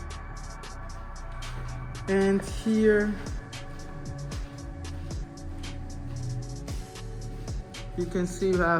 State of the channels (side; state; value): both; identical; correlation 1.00